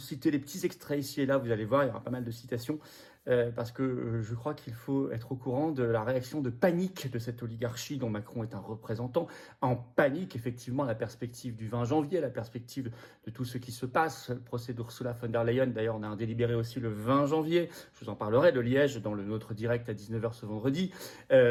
les petits extraits ici et là, vous allez voir, il y aura pas mal de citations, parce que je crois qu'il faut être au courant de la réaction de panique de cette oligarchie dont Macron est un représentant, en panique effectivement à la perspective du 20 janvier, à la perspective de tout ce qui se passe, le procès d'Ursula von der Leyen, d'ailleurs on a un délibéré aussi le 20 janvier, je vous en parlerai, de Liège dans notre direct à 19h ce vendredi,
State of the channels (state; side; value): identical; both; correlation 1.00